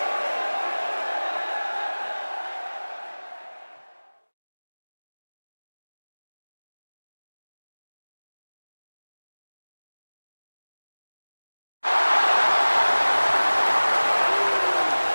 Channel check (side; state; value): both; inverted; correlation -1.00